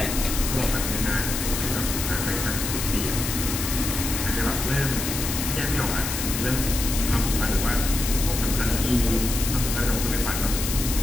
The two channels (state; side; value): noise; left; hiss, 4 dB below the sound